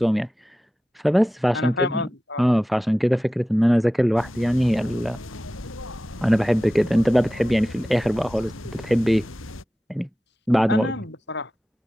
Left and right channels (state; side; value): normal; both; correlation 0.95